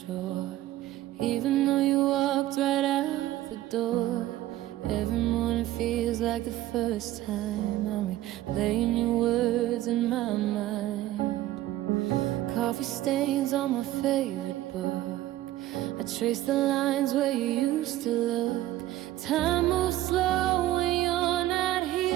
even though you walked right out the door. Every morning feels like the first time. I'm replaying your words in my mind. Coffee stains on my favorite book. I trace the lines where you used to look. Time moves slow when you're not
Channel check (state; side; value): quieter; left; 15.0 dB